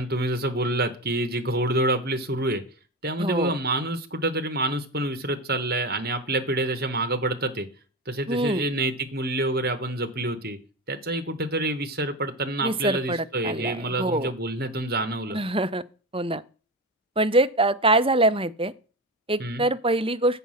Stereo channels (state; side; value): normal; both; correlation 0.20